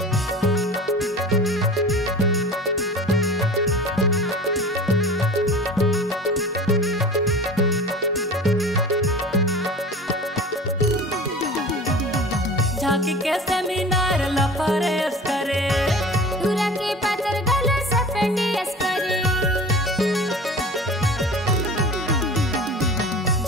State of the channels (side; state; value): both; normal; correlation 0.38